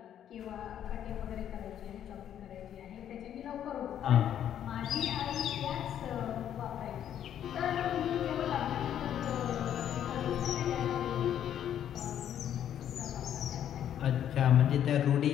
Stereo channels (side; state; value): right; quieter; 10.1 dB